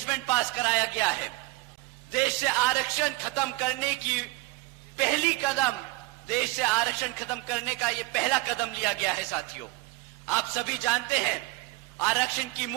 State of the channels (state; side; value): quieter; left; 20.5 dB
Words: पास कराया गया है। देश से आरक्षण खत्म करने का ये पहला कदम लिया गया है। साथियों, आप सभी जानते हैं आरक्षण की